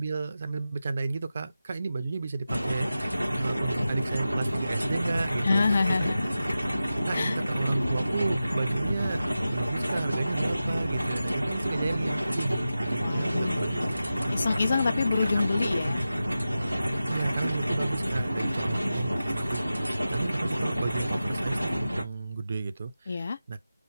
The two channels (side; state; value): both; inverted; correlation -0.93